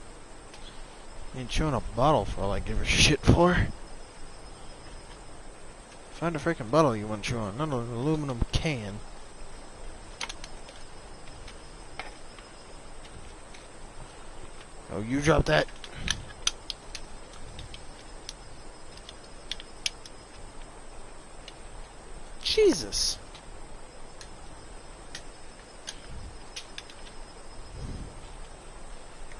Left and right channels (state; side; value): identical; both; correlation 1.00